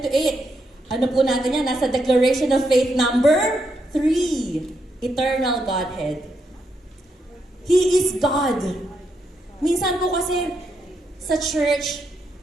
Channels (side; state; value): both; normal; correlation 0.80